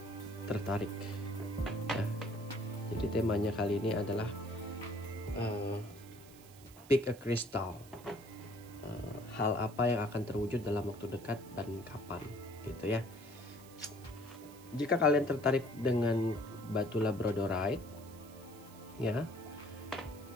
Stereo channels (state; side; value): noise; right; hiss, 21 dB below the sound